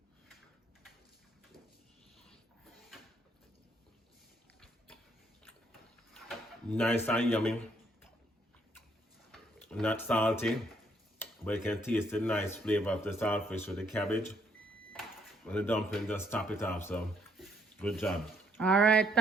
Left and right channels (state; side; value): normal; both; correlation 0.70